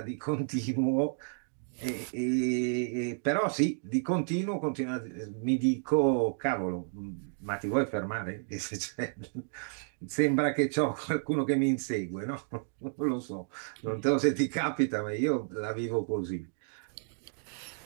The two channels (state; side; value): silent; left; digital silence